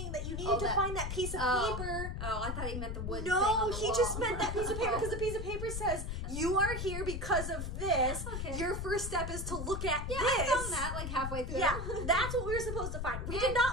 that you needed to find that piece of paper. Oh, I thought he meant the wood thing No, on the he wall. just meant that piece of paper because the piece of paper says, you are here because of this. Okay. Your first step is to look at this. I found that like halfway through. Yeah, that's what we were supposed to find. We did not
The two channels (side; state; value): left; noise; rumble, 4 dB below the sound